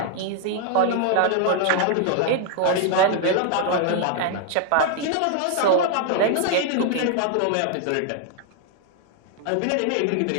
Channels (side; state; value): both; different; correlation 0.00